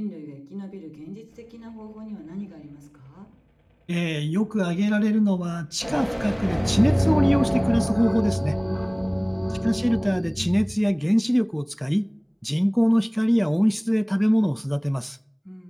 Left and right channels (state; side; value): identical; both; correlation 1.00